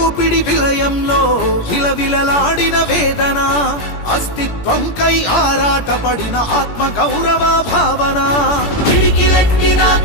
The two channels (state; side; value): late; right; 17 ms